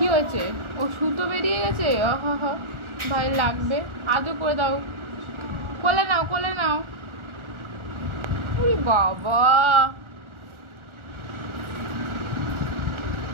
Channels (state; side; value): late; left; 1.4 ms